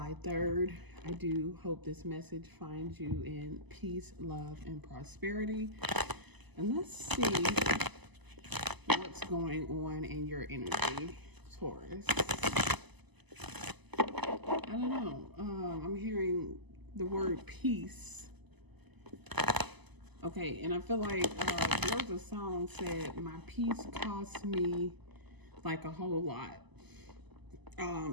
3rd. I do hope this message finds you in peace, love, and prosperity. And let's see what's going on in your energy, Taurus. I don't know. I'm hearing the word peace. Okay, and I feel like there was a song said, my peace cost me like a whole lot.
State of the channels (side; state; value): left; late; 1.0 ms